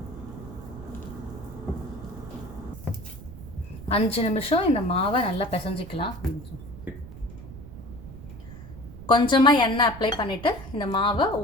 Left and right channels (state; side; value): noise; right; rumble, 14 dB below the sound